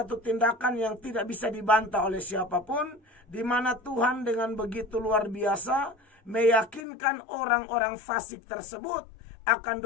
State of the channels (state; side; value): drops out; right; at 6.9 s